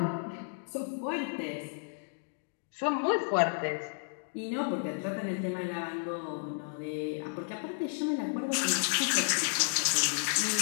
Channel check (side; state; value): right; silent; digital silence